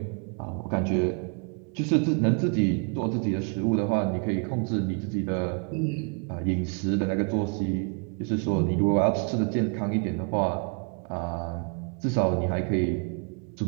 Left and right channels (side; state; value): left; quieter; 38.5 dB